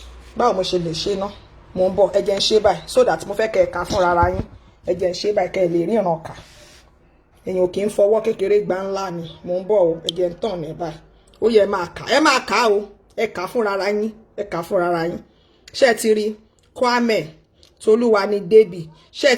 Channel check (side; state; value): both; identical; correlation 1.00